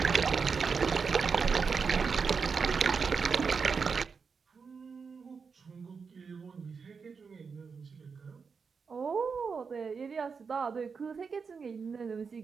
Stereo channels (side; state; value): left; quieter; 5.5 dB